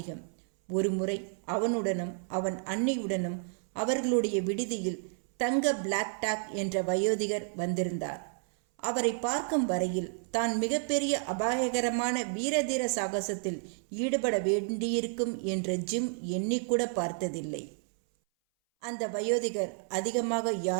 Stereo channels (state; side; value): silent; left; 57 dB below the other